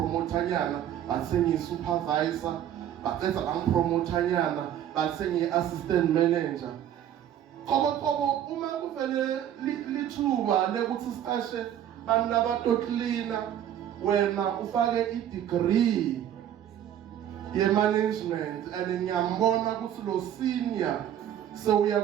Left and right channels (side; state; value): left; quieter; 10.6 dB